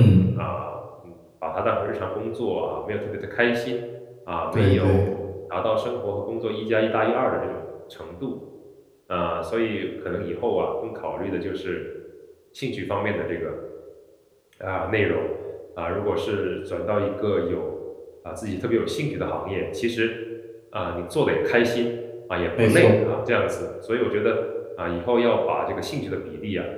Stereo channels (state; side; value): identical; both; correlation 1.00